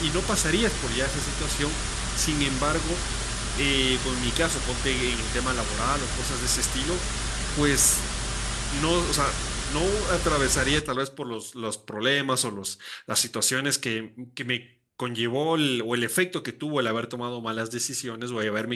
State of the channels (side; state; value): both; identical; correlation 1.00